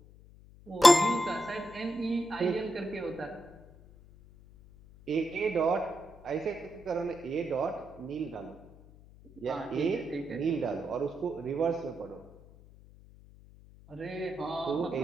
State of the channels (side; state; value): left; noise; hum, 22 dB below the sound